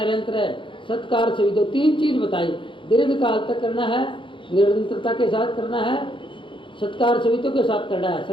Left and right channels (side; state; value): right; late; 0.24 ms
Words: है, सत्कार से दो 3 चीज बताई। दीर्घकाल तक करना है, निरंतरता के साथ करना है, सत्कार सवितों के साथ करना है,